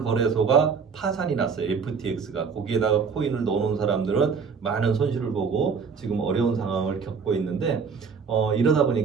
파산이 났어요. FTX가. 거기에다가 코인을 넣어놓은 사람들은 많은 손실을 보고 지금 어려운 상황을 겪고 있는데 이러다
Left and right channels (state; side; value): quieter; left; 5.8 dB